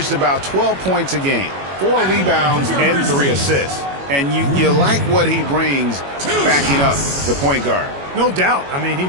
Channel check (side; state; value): left; late; 21 ms